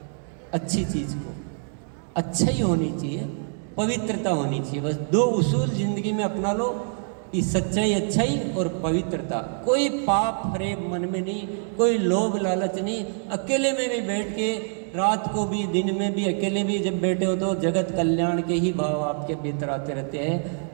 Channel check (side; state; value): left; silent; 62 dB below the other